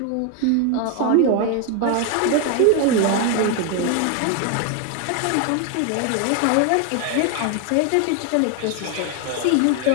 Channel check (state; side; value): different; both; correlation 0.01